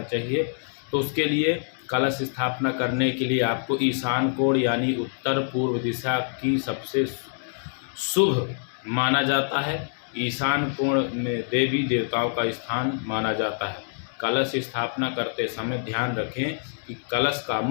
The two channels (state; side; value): silent; right; 61 dB below the other